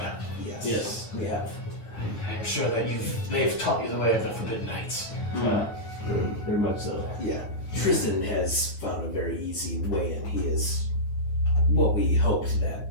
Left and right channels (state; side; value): late; right; 9.4 ms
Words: Yes. Yes. We have. I'm sure that they've taught you the way of the Forbidden Knights. Very much so. Yeah. Tristan has found a very easy way, and he is what we hoped